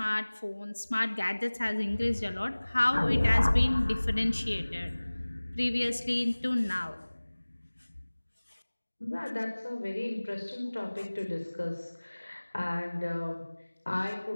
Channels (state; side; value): inverted; both; correlation -1.00